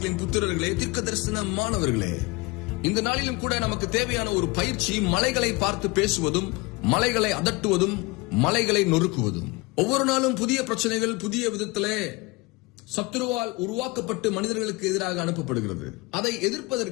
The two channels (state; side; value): quieter; right; 24.9 dB